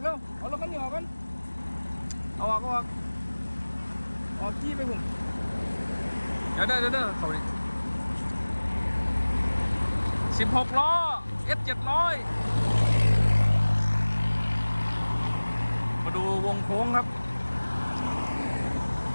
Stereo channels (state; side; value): inverted; both; correlation -1.00